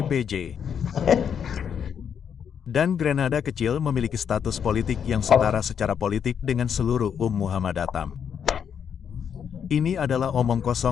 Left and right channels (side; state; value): right; quieter; 7.8 dB